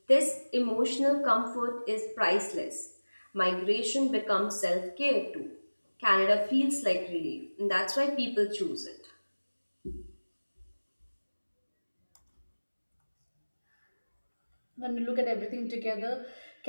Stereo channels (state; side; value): inverted; both; correlation -1.00